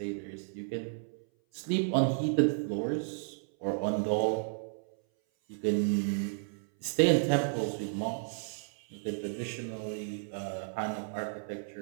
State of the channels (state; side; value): silent; left; 56 dB below the other